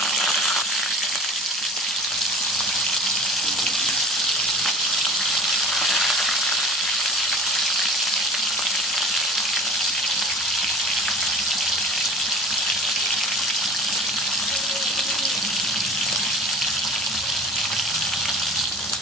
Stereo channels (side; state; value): both; normal; correlation 0.42